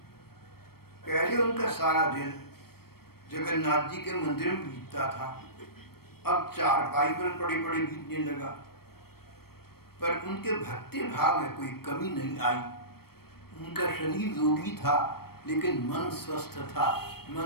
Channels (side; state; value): right; late; 0.94 ms